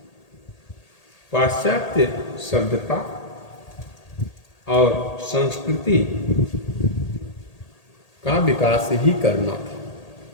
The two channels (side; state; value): right; late; 1.8 ms